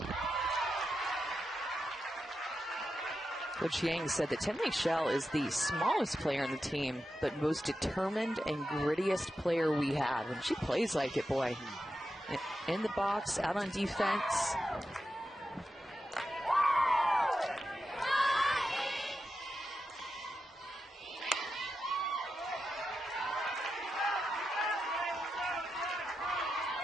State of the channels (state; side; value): normal; both; correlation 0.89